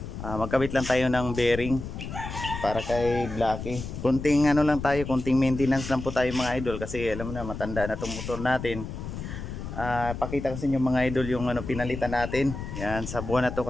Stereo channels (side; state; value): left; noise; rumble, 8 dB below the sound